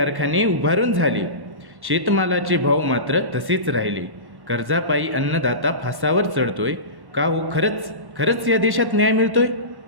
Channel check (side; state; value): left; late; 1.1 ms